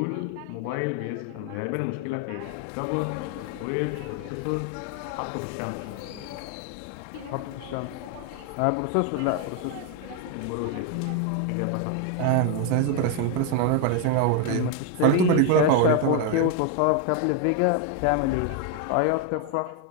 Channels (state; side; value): different; both; correlation 0.01